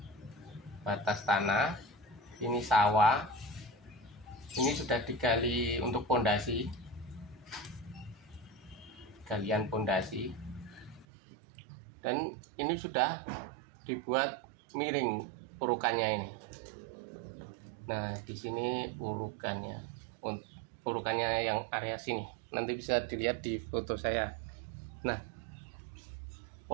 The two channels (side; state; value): left; drops out; at 11.1 s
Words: Ini sawah. Ini sudah digali untuk pondasi. Galian pondasi, dan ini sudah dibuat miring urukannya ini. Nah, di sini urukannya yang area sini, nanti bisa dilihat di foto saya. Nah,